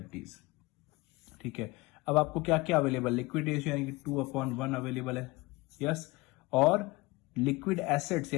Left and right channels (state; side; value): quieter; right; 22.8 dB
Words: ठीक है, अब आपको क्या क्या अवेलेबल, लिक्विड रेशियो यानी कि 2/1 अवेलेबल है, यस, और लिक्विड एसेट्स